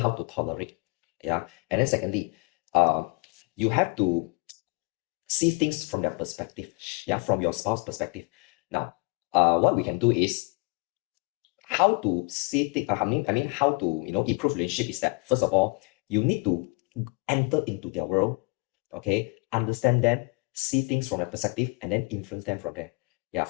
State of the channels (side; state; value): right; quieter; 31.2 dB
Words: to tolerate. Yeah. And then secondly, you have to see things from their perspective. Yeah, from your spouse perspective. Now, what we can do is how to see things. I mean, how to improve relationship is that first of all, you need to enter into their world. Okay, understand them, see things from their perspective, and then influence them from there. Yeah,